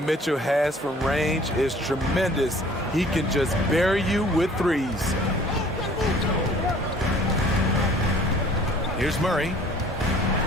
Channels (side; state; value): both; normal; correlation 0.52